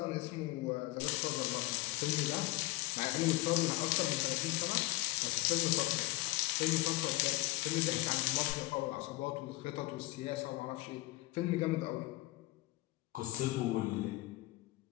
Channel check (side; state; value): right; quieter; 19.4 dB